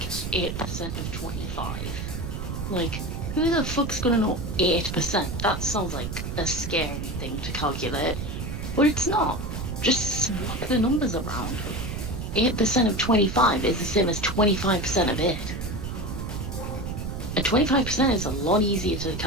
8% of 25, like who the fuck's gonna know 8%? That sounds like a scary thing to calculate, but it's not. Just swap the numbers around. 8% of 25 is the same as 25% of 8. And 25% is a lot easier to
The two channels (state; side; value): noise; right; rumble, 5 dB below the sound